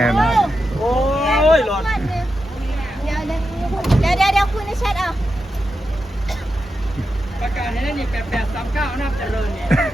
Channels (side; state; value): both; normal; correlation 0.88